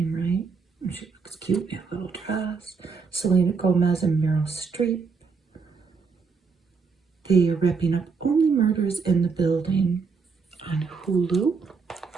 right. She looks cute in a little dress. Selena Gomez and Meryl Streep. They are wrapping up Only Murders in the Building on Hulu.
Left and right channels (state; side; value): quieter; left; 5.1 dB